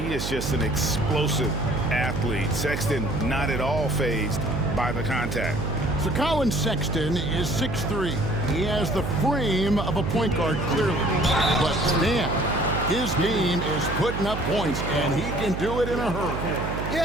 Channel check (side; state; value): right; noise; hum, 4 dB below the sound